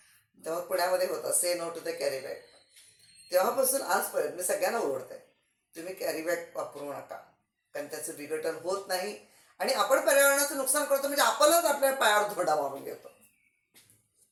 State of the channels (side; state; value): both; identical; correlation 1.00